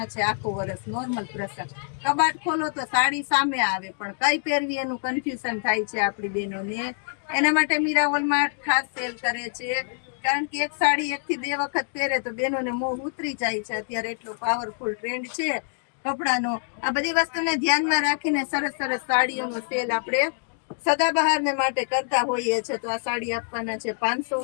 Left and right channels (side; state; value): right; silent; digital silence